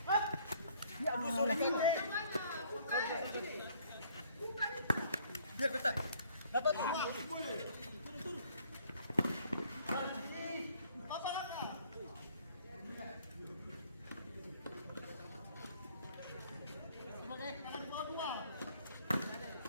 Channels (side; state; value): both; inverted; correlation -0.61